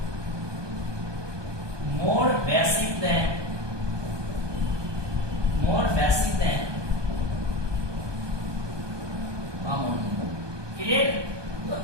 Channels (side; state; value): left; late; 1.2 ms